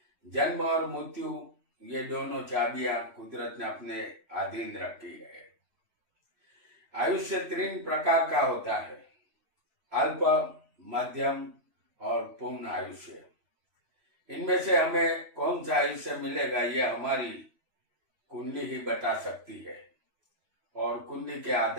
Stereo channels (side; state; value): left; late; 3.0 ms